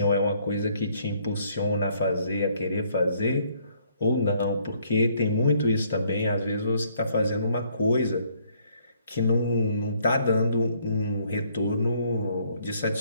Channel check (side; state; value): both; inverted; correlation -0.66